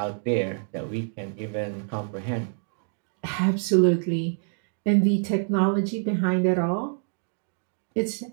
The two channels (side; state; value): left; silent; 61 dB below the other